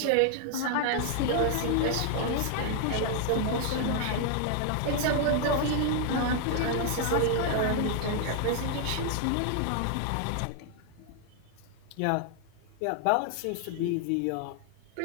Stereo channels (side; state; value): both; different; correlation 0.00